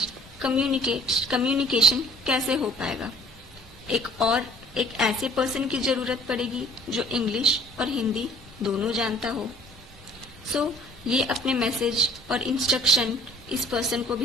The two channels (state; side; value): normal; both; correlation 0.53